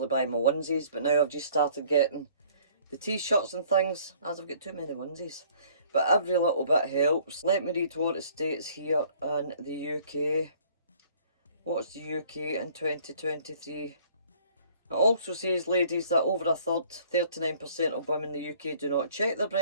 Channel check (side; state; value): both; inverted; correlation -0.57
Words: buy my onesies, but now I've just started getting the t-shirts and things, as I've got too many onesies. But every little bit helps. Let me read what it states here in the UK. What's the UK in 2023? It also says, ladies, that over a third, 39% of women in the UK do not check their